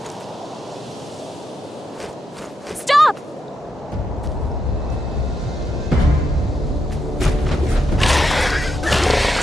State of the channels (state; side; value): normal; both; correlation 0.82